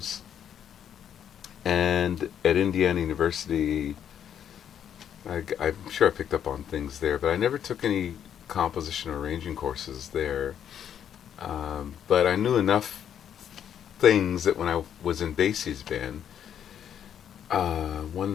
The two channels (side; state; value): right; quieter; 9.2 dB